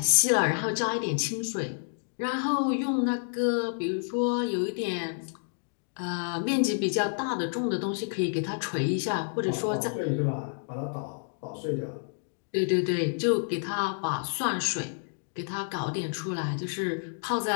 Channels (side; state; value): right; silent; digital silence